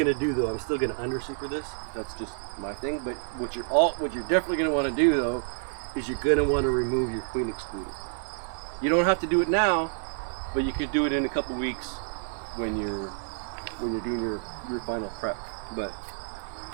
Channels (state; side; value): silent; left; digital silence